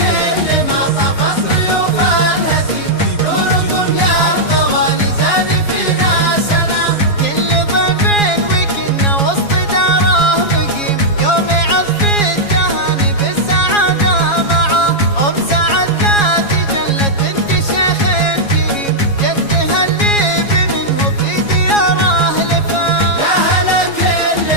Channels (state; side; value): late; right; 7.3 ms